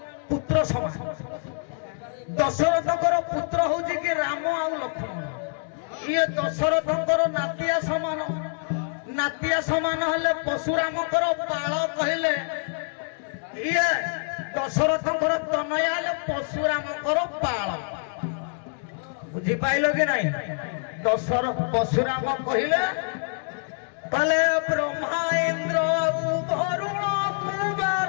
ପୁତ୍ର ସମାନ। ଦଶରଥଙ୍କର ପୁତ୍ର ହଉଛି କି ରାମ ଆଉ ଲକ୍ଷ୍ମଣ। ଇଏ ଦଶରଥଙ୍କର ନାତିଆ ସମାନ। ନାତିଆ ସମାନ ହେଲେ ପଶୁରାମଙ୍କର ବାଳ କହିଲେ ଇଏ ଦଶରଥଙ୍କର ତନୟା ହେଲେ ପଶୁରାମଙ୍କର ବାଳ। ବୁଝିପାଇଲ କି ନାଇଁ? ପଶୁରାମ କହିଲେ କଲେ ବ୍ରହ୍ମା ଇନ୍ଦ୍ର ବରୁଣ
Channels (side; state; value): right; silent; 58 dB below the other